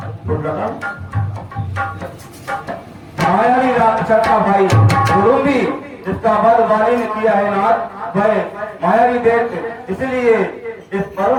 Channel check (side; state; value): both; identical; correlation 1.00